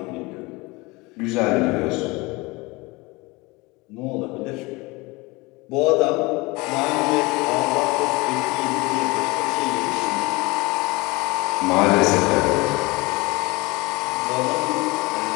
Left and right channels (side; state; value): right; quieter; 24.0 dB